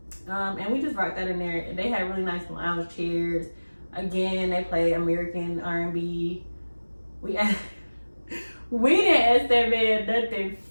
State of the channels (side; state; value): both; inverted; correlation -1.00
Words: And we just rocked that in there. They had really nice lounge chairs. Again, they play American R&B. We didn't ask that man nothing.